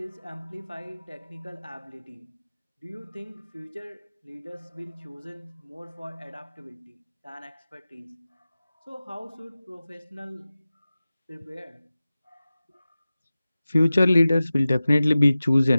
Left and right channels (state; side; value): inverted; both; correlation -0.96